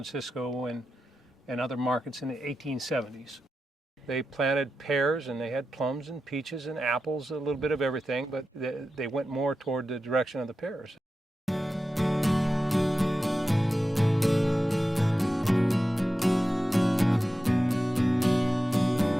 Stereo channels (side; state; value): both; normal; correlation 0.91